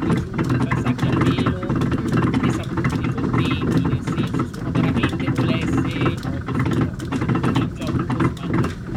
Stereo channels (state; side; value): identical; both; correlation 1.00